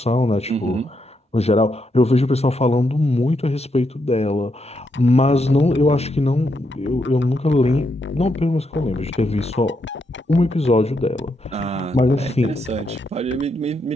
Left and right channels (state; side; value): normal; both; correlation 0.80